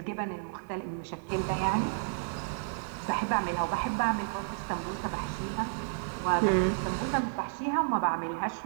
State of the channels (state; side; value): silent; left; digital silence